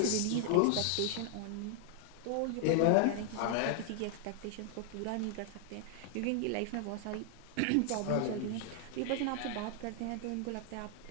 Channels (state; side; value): different; both; correlation 0.00